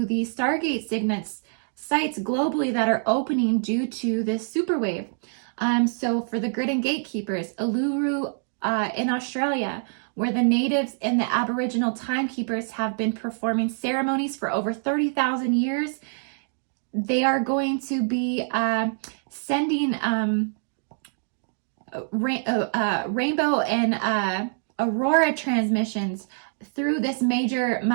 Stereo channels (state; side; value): silent; left; digital silence